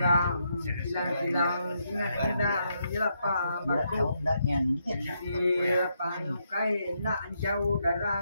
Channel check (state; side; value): inverted; both; correlation -0.79